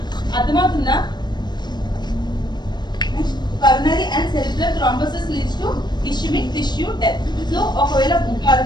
అర్థమవుతుందా? Coronary and cerebral thrombosis leads to ischaemic tissue death. So ఒకవేళ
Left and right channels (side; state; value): right; late; 0.21 ms